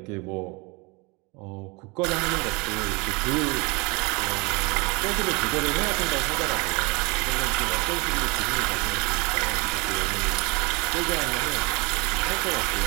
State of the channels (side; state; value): left; quieter; 28.0 dB